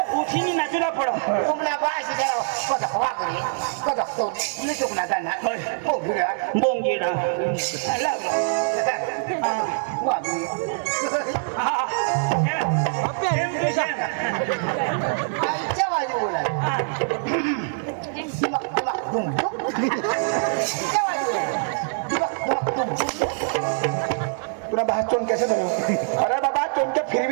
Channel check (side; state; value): left; silent; digital silence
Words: उठीनी नाचूला पड तुम्हाला बाशी करा कदक वागरे कदक तो तुला चुकना जाणार बोंगिरा बोंगिडा वागरे आईच्या बाजू बोला तुला बाहेर चोन कैसे धरो अरे बाबा चोन के